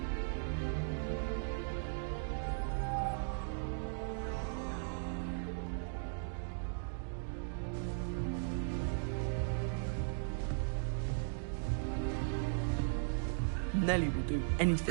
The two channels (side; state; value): left; silent; digital silence